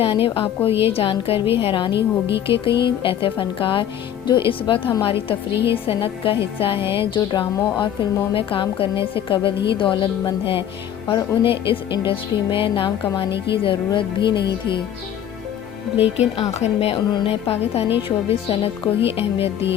آپ کو یہ جان کر بھی حیرانی ہوگی کہ کئی ایسے فنکار جو اس وقت ہماری تفریحی صنعت کا حصہ ہیں، جو ڈراموں اور فلموں میں کام کرنے سے قبل ہی دولت مند ہیں اور انہیں اس انڈسٹری میں نام کمانے کی ضرورت بھی نہیں تھی، لیکن آخر میں انہوں نے پاکستانی شوبز صنعت کو ہی اہمیت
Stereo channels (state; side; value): quieter; right; 10.1 dB